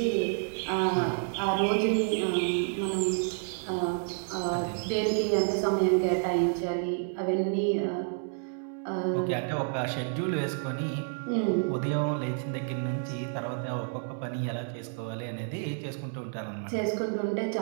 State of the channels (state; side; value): silent; left; 58 dB below the other